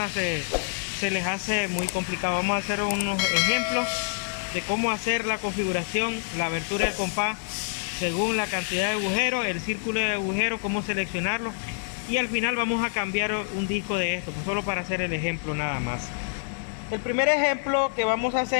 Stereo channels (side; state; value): right; silent; digital silence